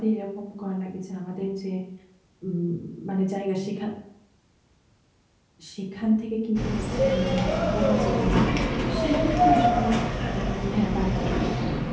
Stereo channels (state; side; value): identical; both; correlation 1.00